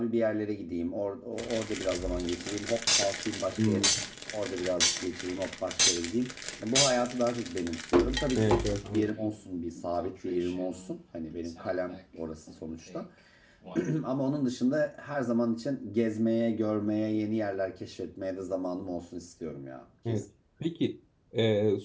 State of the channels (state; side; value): identical; both; correlation 1.00